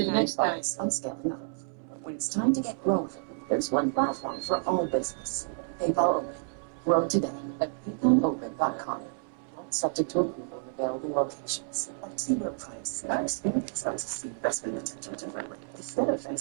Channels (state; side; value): silent; left; 58 dB below the other